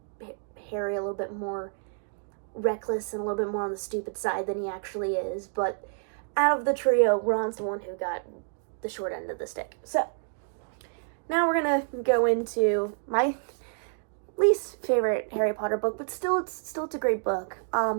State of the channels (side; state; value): left; silent; digital silence